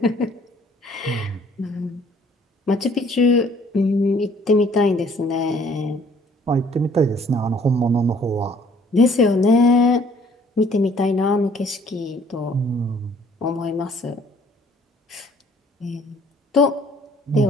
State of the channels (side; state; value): both; normal; correlation 0.59